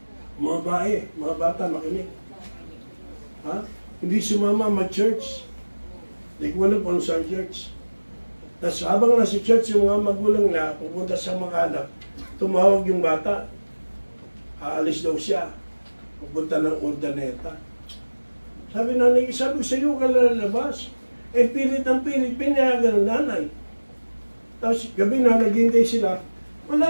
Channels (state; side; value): inverted; both; correlation -1.00